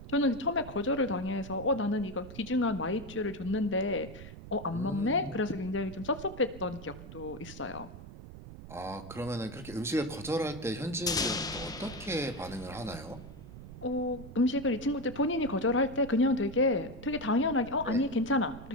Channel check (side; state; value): right; noise; rumble, 14 dB below the sound